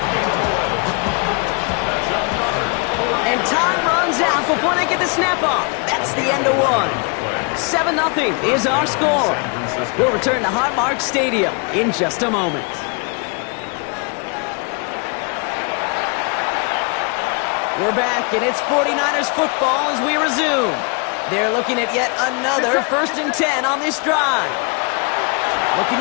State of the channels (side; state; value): right; quieter; 33.6 dB